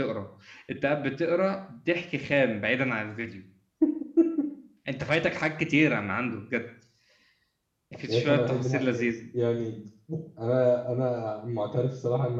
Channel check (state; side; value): identical; both; correlation 1.00